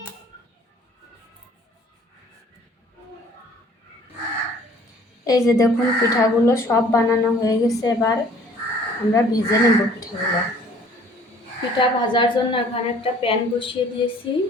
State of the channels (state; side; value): normal; both; correlation 0.55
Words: এই যে দেখুন পিঠাগুলো সব বানানো হয়ে গেছে। এবার আমরা ভেজে নেব পিঠাগুলো। পিঠা ভাজার জন্য এখানে একটা প্যান বসিয়ে দিয়েছি।